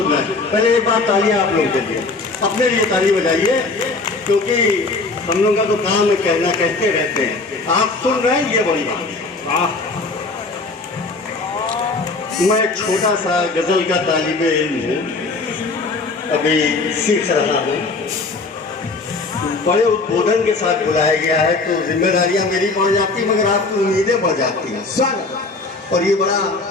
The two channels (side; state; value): right; quieter; 3.6 dB